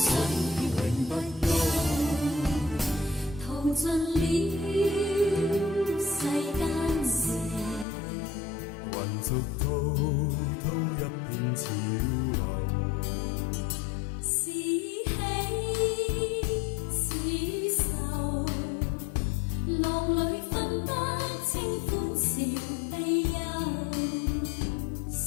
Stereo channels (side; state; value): right; drops out; at 7.9 s